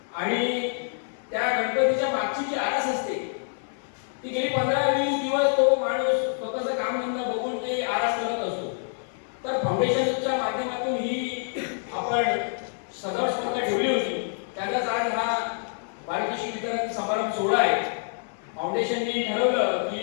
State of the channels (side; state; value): right; silent; digital silence